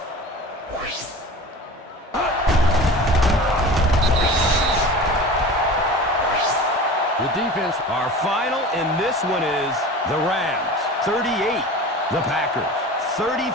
The defense... Our final in this one is the Rams 38, the Packers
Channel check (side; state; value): both; normal; correlation 0.36